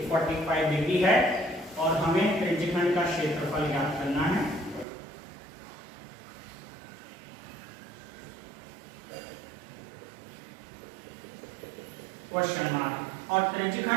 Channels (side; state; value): left; drops out; at 4.9 s